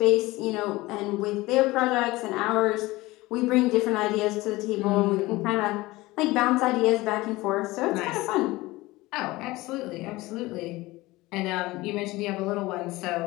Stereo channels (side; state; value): right; quieter; 20.0 dB